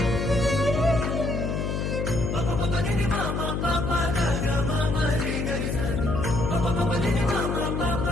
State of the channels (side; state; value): left; noise; hum, 1 dB below the sound